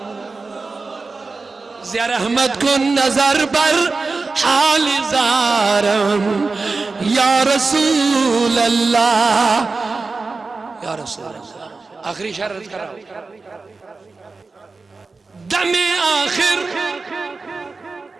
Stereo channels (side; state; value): left; quieter; 4.0 dB